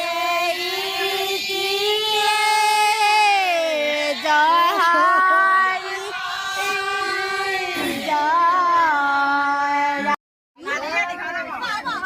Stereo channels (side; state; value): both; identical; correlation 1.00